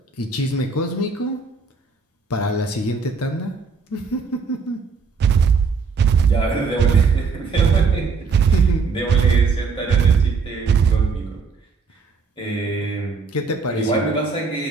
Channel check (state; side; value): quieter; left; 4.9 dB